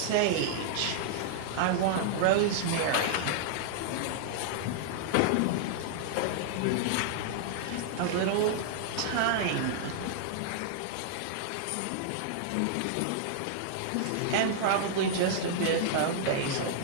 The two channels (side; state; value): both; different; correlation -0.01